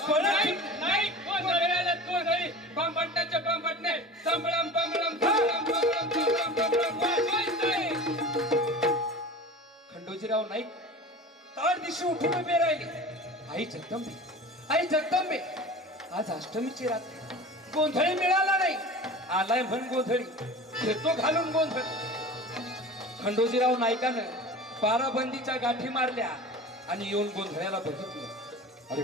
खंडोजीराव नाईक ताड दिवशी उठून उभे राहिले. आई जगदंबे, आई जगदंबे, आज अष्टमीची रात्र, गोंधळी मिळाला नाही. आलाय म्हण गोंधळी, घेतो घालून गोंधळ. खंडोजीराव नाईकानं बाराबंदीच्या गाठी मारल्या आणि येऊन गोंधळ्याला बघितलं. अरे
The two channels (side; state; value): both; normal; correlation 0.36